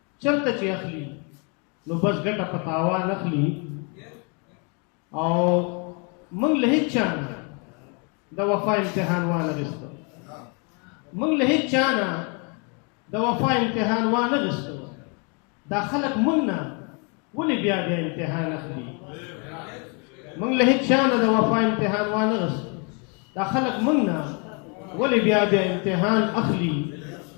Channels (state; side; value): quieter; right; 35.2 dB